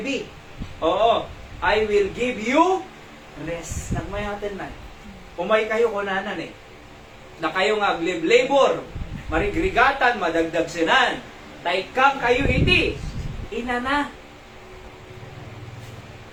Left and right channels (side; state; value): both; identical; correlation 1.00